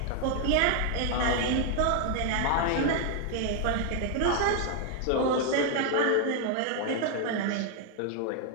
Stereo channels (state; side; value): different; both; correlation 0.00